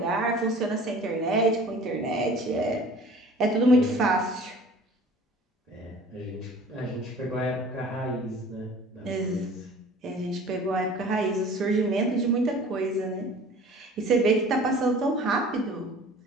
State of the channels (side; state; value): both; normal; correlation 0.46